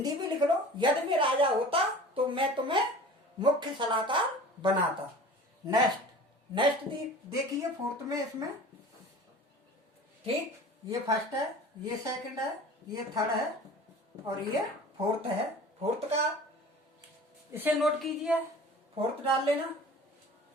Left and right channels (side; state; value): both; normal; correlation 0.41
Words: भी लिख लो, यदि मैं राजा होता तो मैं तुम्हें मुख्य सलाहकार बनाता। नेक्स्ट देखिए फोर्थ में, इसमें ठीक, ये फर्स्ट है, ये सेकंड है, ये थर्ड है और ये फोर्थ है। फोर्थ का इसे नोट कीजिए, फोर्थ डाल लेना।